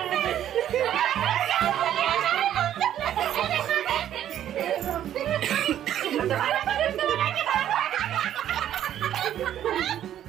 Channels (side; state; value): left; quieter; 11.1 dB